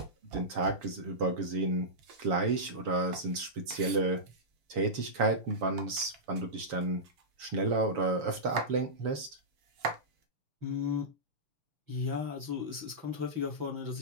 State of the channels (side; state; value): left; late; 7.0 ms